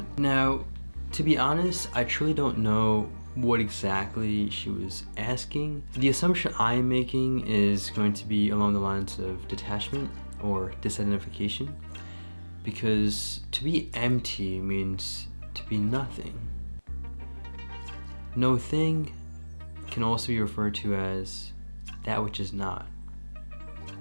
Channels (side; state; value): both; inverted; correlation -1.00